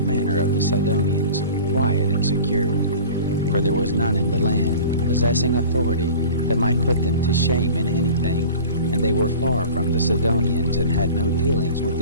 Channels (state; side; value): inverted; both; correlation -0.40